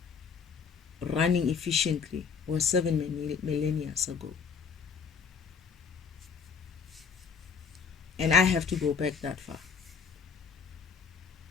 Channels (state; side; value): quieter; right; 6.0 dB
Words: running efficiently, was 7 millennia ago. And I have to go back that far.